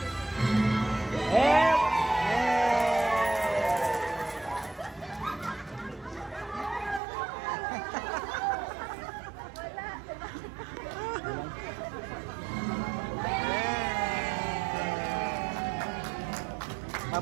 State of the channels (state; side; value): drops out; left; at 7.0 s